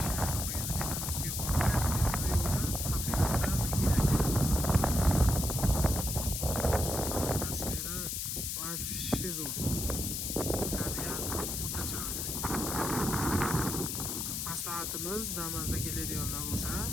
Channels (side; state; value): left; noise; hiss, 2 dB below the sound